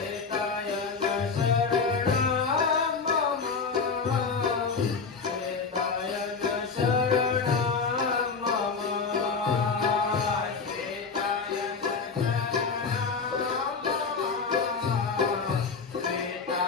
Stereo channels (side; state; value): right; quieter; 5.0 dB